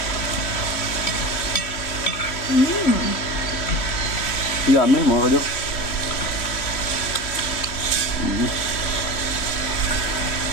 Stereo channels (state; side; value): late; right; 3.0 ms